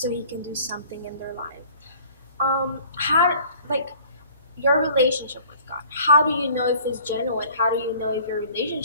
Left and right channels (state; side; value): inverted; both; correlation -0.51